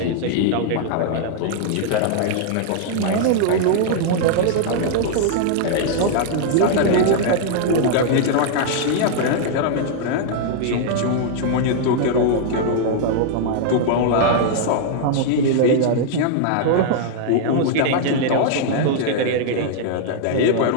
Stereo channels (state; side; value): different; both; correlation -0.01